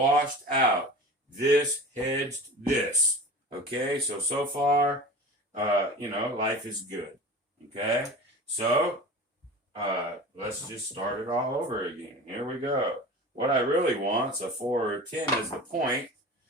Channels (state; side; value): normal; both; correlation 0.35